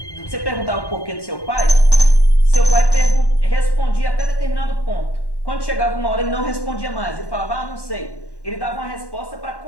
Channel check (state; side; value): late; right; 1.1 ms